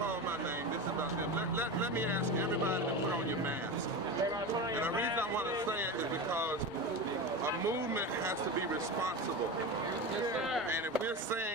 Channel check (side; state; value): both; normal; correlation 0.24